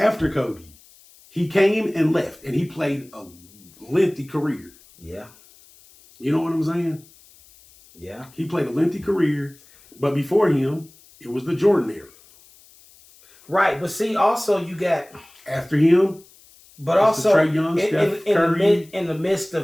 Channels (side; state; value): left; noise; hiss, 26 dB below the sound